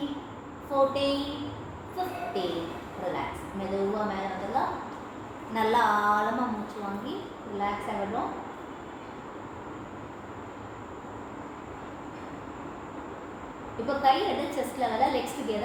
14 15. ரிலாக்ஸ். மெதுவாக மேலே வந்துடலாம். நல்லா ஆழமாக மூச்சு வாங்கி ரிலாக்ஸாக விடுறோம். இப்போ கை ரெண்டு செஸ்ட் லெவலில் லெக்ஸ்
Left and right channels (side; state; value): both; identical; correlation 1.00